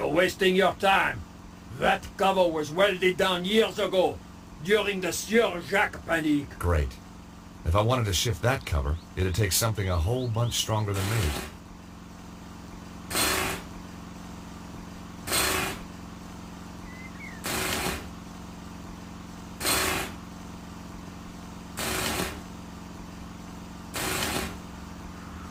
wasting your time. That cover was welded down years ago, during the Sieur Jacques Panique. Great. If I wanted to shift that cover, it'd take something a whole bunch stronger than me.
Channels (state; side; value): identical; both; correlation 1.00